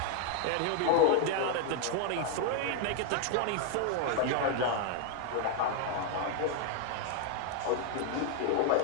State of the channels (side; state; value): both; different; correlation 0.01